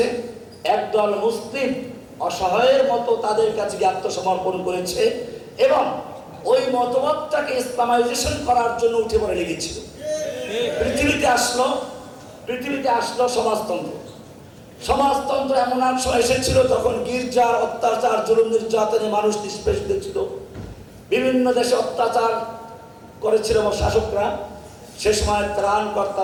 একদল মুসলিম অসহায়ের মতো তাদের কাছে আত্মসমর্পণ করেছে এবং ওই মতবাদটাকে ইসলামাইজেশন করার জন্য উঠে পড়ে লেগেছিল। পৃথিবীতে আসলো সমাজতন্ত্র। সমাজতন্ত্র এমন এক সময় এসেছিল যখন গির্জার অত্যাচার, জুলুম, নির্যাতনে মানুষ নিষ্পেষিত ছিল। বিভিন্ন দেশে অত্যাচার করেছিল শাসকরা, সে সময়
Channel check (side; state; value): both; identical; correlation 1.00